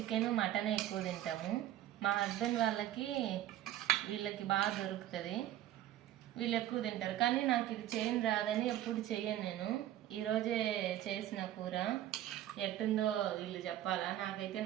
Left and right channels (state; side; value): quieter; left; 12.9 dB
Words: మటన్ ఎక్కువ తింటాము. మా హస్బెండ్ వీళ్ళకి బాగా దొరుకుతుంది, వీళ్ళు ఎక్కువ తింటారు. కానీ నాకు ఇది చేయని రాదని ఎప్పుడు చెయ్యను నేను. ఈరోజే చేసిన కూర ఎట్టుందో వీళ్ళు చెప్పాలా, నాకైతే